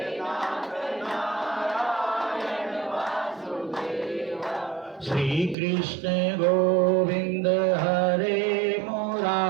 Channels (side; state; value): left; drops out; at 5.6 s